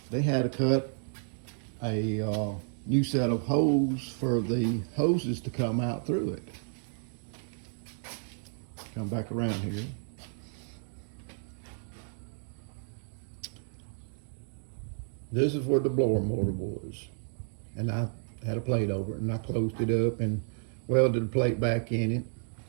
they had to cut a new set of hose for the hoses to come out through it. Come back around here. This is where the blower motor was. And I had a plate over it and I closed it up and welded the plate back in it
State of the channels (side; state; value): left; silent; digital silence